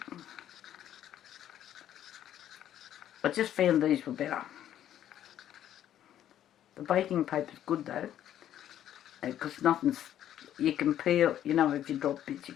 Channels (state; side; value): quieter; right; 11.2 dB